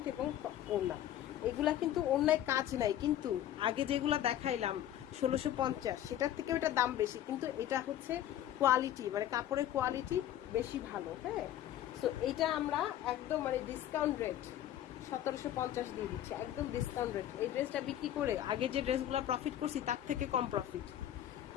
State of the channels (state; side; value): quieter; right; 11.9 dB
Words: এবং ওড়না। এগুলা কিন্তু অন্যায় কাজ নাই, কিন্তু আগে যেগুলো দেখাইলাম 1650 সেটার থেকে ওটা দাম বেশি, কিন্তু এটা হচ্ছে কোয়ালিটি মানে কাপড়ের কোয়ালিটি বেশি ভালো। হ্যাঁ, সো এটা আমরা একদম মানে ডিসকাউন্ট রেট 1750 দিয়ে দিচ্ছি, একদম ডিসকাউন্ট রেট। এই ড্রেসটা বিক্রি করে আগে যে ড্রেসগুলো প্রফিট করছি তার থেকে কম প্রফিট,